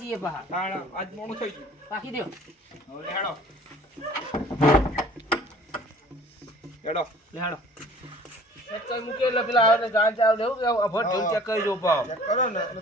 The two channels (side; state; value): both; normal; correlation 0.51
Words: જઈએ પા તાણ આજ મોડું થઈ ગયું. વાકી દેવ હવે હેડો. હેડો. લેહાડો ચેક કરી મૂકે એટલે પેલા આવે ને ગાન ચાવ લેવું કે અભર ઢોલ ચેક કરી જો પાવ. ચેક કરો ને.